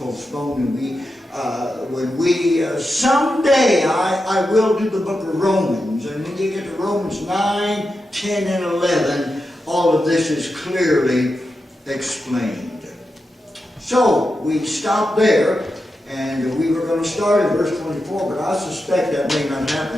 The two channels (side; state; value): both; normal; correlation 0.89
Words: and someday I will do the book of Romans, and when you get to Romans 9, 10, and 11, all of this is clearly explained. So, we stopped there, and we were going to start at verse 24, but I suspect that may not